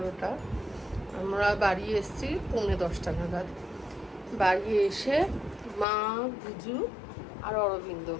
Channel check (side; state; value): right; drops out; at 5.9 s